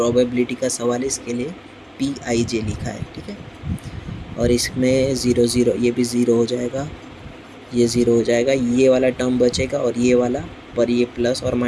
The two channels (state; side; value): identical; both; correlation 1.00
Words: का सवाल है, इसके लिए PIJ लिखा है। ठीक है, और इसमें 0 0 ये भी 0 हो जाएगा, ये 0 हो जाएगा, ये वाला टर्म बचेगा और ये वाला पर ये प्लस और